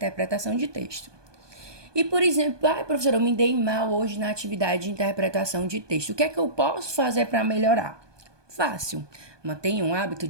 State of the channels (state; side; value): late; left; 1.2 ms